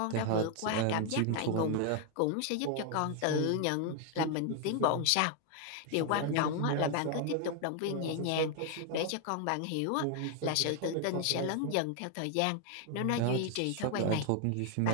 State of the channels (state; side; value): different; both; correlation 0.00